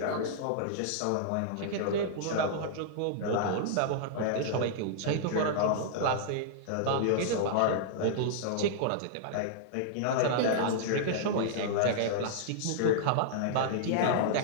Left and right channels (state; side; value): different; both; correlation -0.02